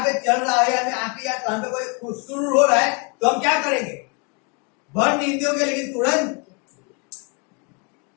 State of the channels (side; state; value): right; quieter; 34.4 dB